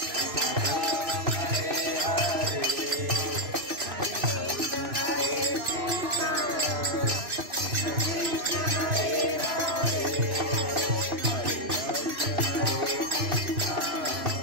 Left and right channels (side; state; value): left; late; 3.0 ms